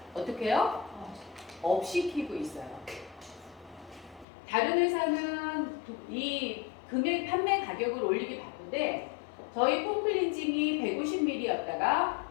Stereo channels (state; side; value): drops out; right; at 4.2 s